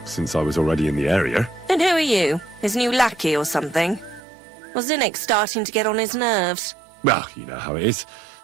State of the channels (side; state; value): left; drops out; at 4.2 s